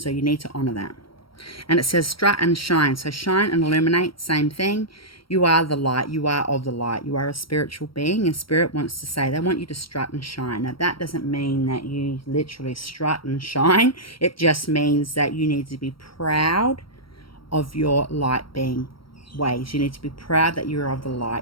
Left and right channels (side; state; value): right; late; 0.74 ms